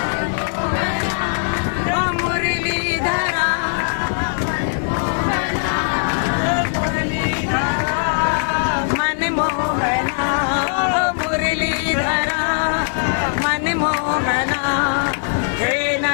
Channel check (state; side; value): silent; right; 61 dB below the other